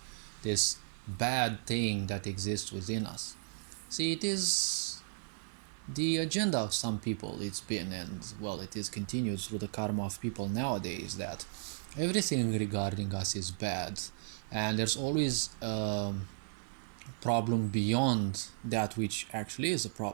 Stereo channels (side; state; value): left; silent; digital silence